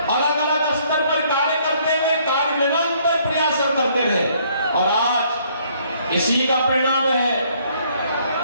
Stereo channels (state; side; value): inverted; both; correlation -0.64